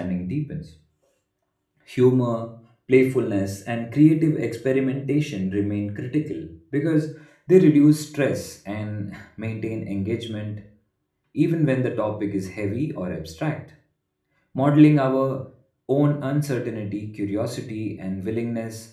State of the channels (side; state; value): both; identical; correlation 1.00